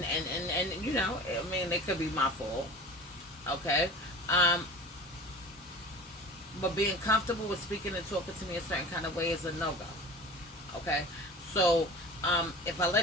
you know, I mean, it could be my fault. Okay? But being comfortable with speaking and talking to me a certain kind of way is a no-go. Okay? So, if I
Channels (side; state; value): both; normal; correlation 0.37